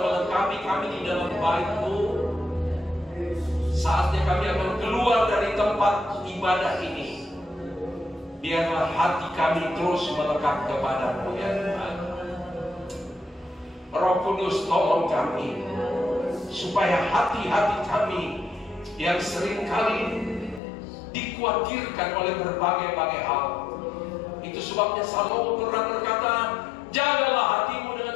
melengkapi kami di dalam bait-Mu. Saatnya kami akan keluar dari tempat ibadah ini. Biarlah hati kami terus melekat kepada-Mu ya Tuhan. Roh Kudus tolong kami, supaya hati-hati kami yang seringkali dikhawatirkan oleh berbagai-bagai hal. Itu sebabnya Salomo pernah berkata, jagalah hatimu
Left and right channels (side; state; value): right; drops out; at 20.6 s